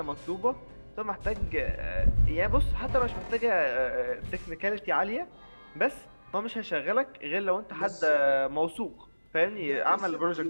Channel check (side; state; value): both; inverted; correlation -1.00